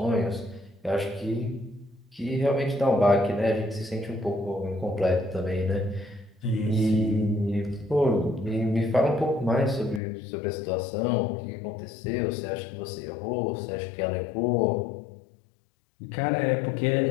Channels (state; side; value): drops out; right; at 10.0 s